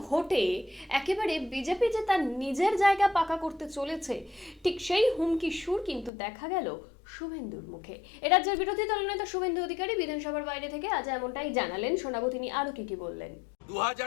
ভোটে একেবারে বিজেপি যে তার নিজের জায়গা পাকা করতে চলেছে, ঠিক সেই হুমকি সুর কিন্তু দেখা গেল শুভেন্দুর মুখে। রাজ্যের বিরোধী দলনেতা শুভেন্দু অধিকারী বিধানসভার বাইরে থেকে আজ এমনটাই জানালেন। শোনাবো তিনি আরো কি বললেন।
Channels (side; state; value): right; drops out; at 6.1 s